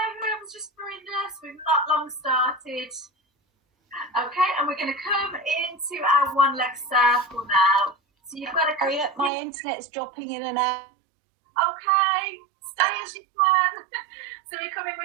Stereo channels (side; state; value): left; drops out; at 9.3 s